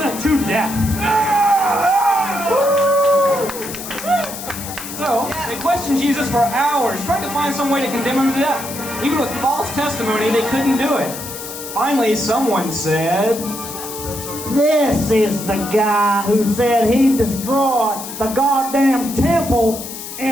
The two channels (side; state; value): left; noise; hiss, 10 dB below the sound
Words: to death. So, they questioned Jesus for hours, trying to find some way to condemn him to death. Even with false testimony, they couldn't do it. Finally, someone said, This is the guy who said he'd destroy the goddamn temple